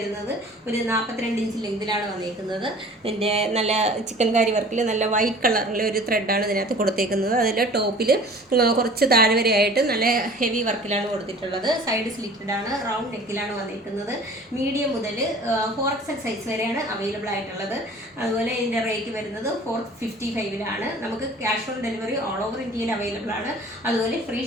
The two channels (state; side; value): normal; both; correlation 0.46